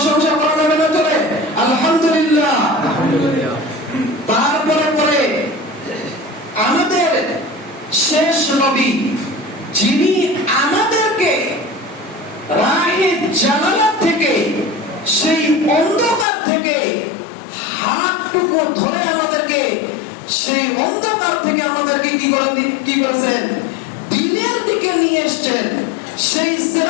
করা যাবে না? চলে আলহামদুলিল্লাহ। তারপরে পরে আমাদের শেষ নবী, যিনি আমাদেরকে রাহে জালালাত থেকে, সেই অন্ধকার থেকে হাতটুকু ধরে আমাদেরকে সেই অন্ধকার থেকে আমাদেরকে কি করেছেন? দিনের দিকে নিয়ে এসেছেন। সেই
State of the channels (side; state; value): right; drops out; at 16.2 s